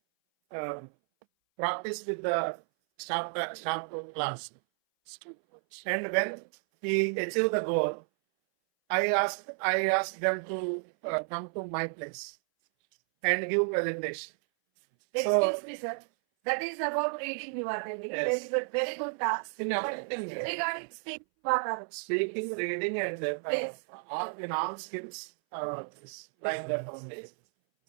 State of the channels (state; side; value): silent; left; 57 dB below the other